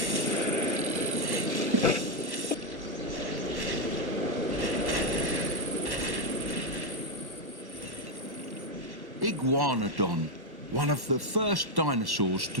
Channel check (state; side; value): late; left; 1.1 ms